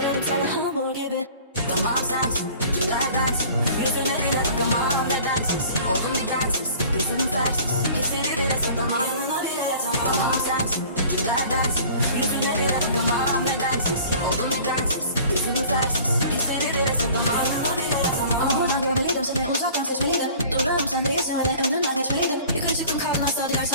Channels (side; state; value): both; inverted; correlation -0.47